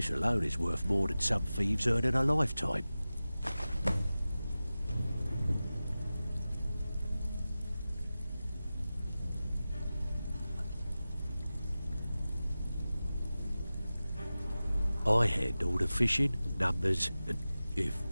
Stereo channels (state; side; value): inverted; both; correlation -0.95